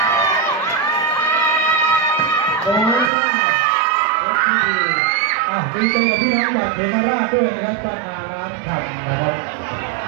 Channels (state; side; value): drops out; left; at 3.1 s